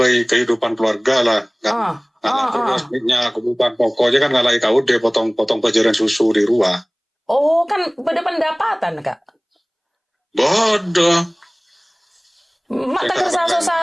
keluarga lah. Terusnya kebutuhan pokoknya kan ngalai kau deh potong pajaran susu di rumah. Oh, kan beda pendapatan kak. Bodoh. Mata kerja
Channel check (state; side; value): identical; both; correlation 1.00